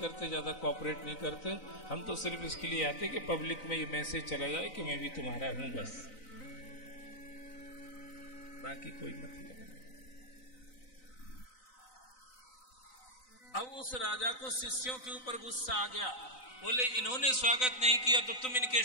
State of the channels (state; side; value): late; right; 3.9 ms